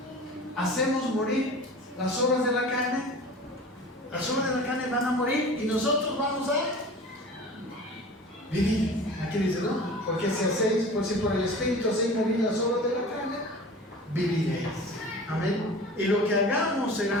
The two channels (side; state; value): both; normal; correlation 0.39